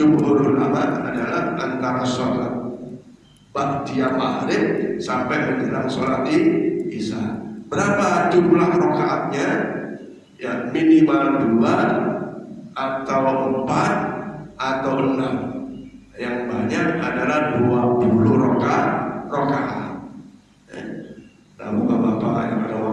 ulama adalah antara sholat ba'diyah maghrib sampai menjelang sholat isya. Berapa jumlah rakaatnya? Ya, minimal 2 atau 4 atau 6. Yang banyak adalah 20 rakaat. Nah, bapak-bapak yang ada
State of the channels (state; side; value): identical; both; correlation 1.00